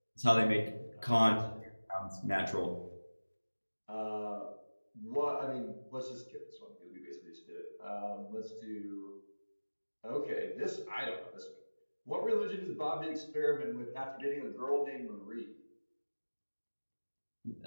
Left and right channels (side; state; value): both; inverted; correlation -1.00